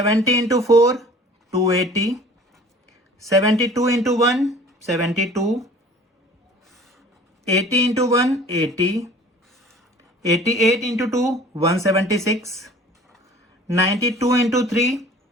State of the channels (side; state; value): both; normal; correlation 0.48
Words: into 4 280, 72 into 1 72, 80 into 1 80, 88 into 2 176, 92 into 3